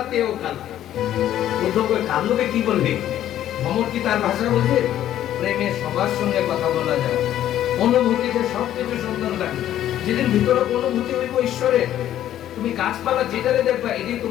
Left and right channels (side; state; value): right; quieter; 11.9 dB